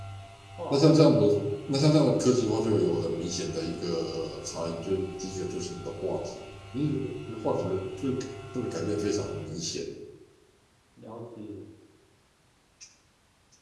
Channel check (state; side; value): identical; both; correlation 1.00